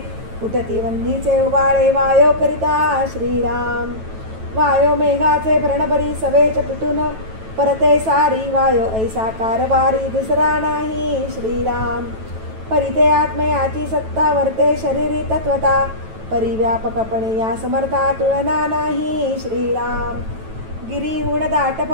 उठती वन्नीचे उबाळे वायो करिता श्रीराम. वायो मेघाचे भरणभरी सवेच पिटून परते सारी. वायो ऐसा कारभारी दुसरा नाही श्रीराम. परिते आत्मयाची सत्ता वर्ते शरीरी तत्वता. परिव्यापकपणे या समर्था तुलना नाही श्रीराम. गिरीहून दाट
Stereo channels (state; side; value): late; left; 9.1 ms